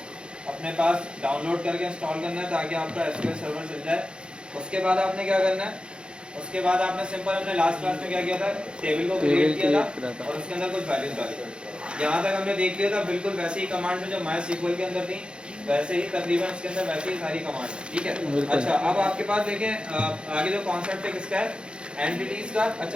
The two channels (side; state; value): left; late; 0.053 ms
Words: अपने पास download करके इंस्टॉल करना है ताकि आपका SQL सर्वर चल जाए। उसके बाद आपने क्या करना है, उसके बाद आपने सिंपल अपने लास्ट क्लास में क्या किया था, टेबल को क्रिएट किया था और उसके अंदर कुछ वैल्यूज डाली। यहाँ तक हमने देख लिया था, बिल्कुल वैसे ही कमांड जो MySQL के अंदर थी वैसे ही तकरीबन इसके अंदर वैसे ही सारी कमांड है, ठीक है। अच्छा, अब आपके पास देखें आगे जो कॉन्सेप्ट है किसका है, एंटिटीज का।